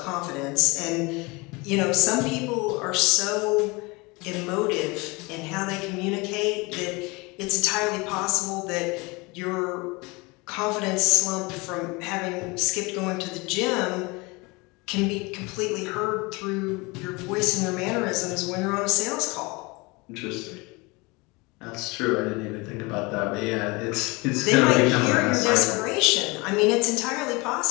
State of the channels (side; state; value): right; quieter; 25.7 dB